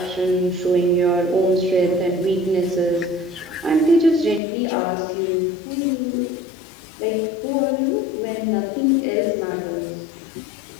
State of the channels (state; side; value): drops out; right; at 4.4 s